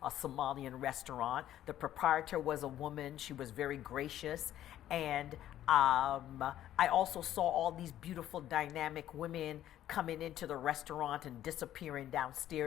a Somalian restaurant. The proprietor was a woman. She was very gracious. And I also saw all these beautiful, dynamic women coming into the restaurant and disappearing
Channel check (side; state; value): right; quieter; 12.3 dB